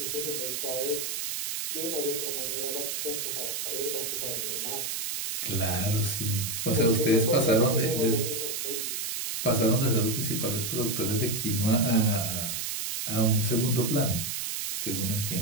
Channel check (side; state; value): right; noise; hiss, 3 dB below the sound